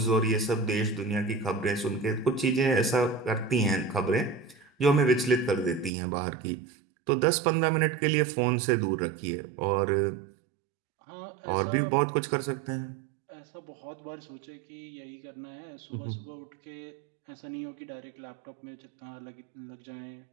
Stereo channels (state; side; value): drops out; left; at 5.9 s